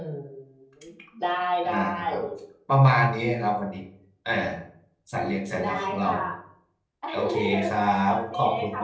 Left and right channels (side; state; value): both; identical; correlation 1.00